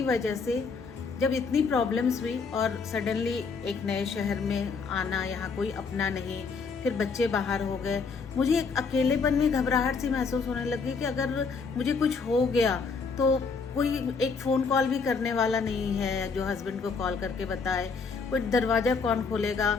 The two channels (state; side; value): quieter; right; 5.0 dB